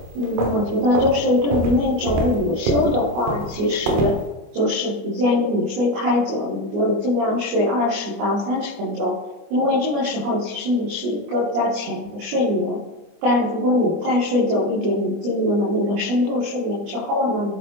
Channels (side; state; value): left; late; 25 ms